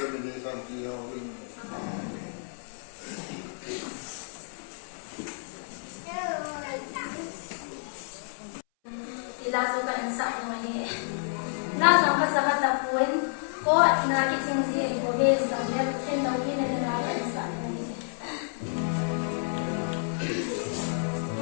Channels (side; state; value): right; silent; 58 dB below the other